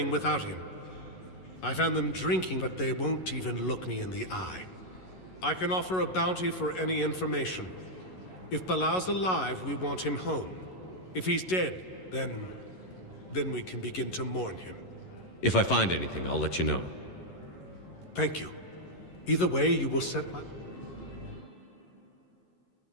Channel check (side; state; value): right; late; 11 ms